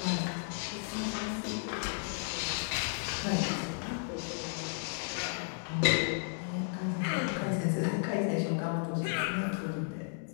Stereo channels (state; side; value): silent; right; digital silence